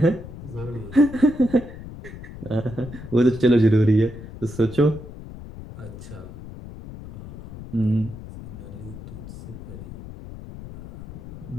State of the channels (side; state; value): left; noise; rumble, 13 dB below the sound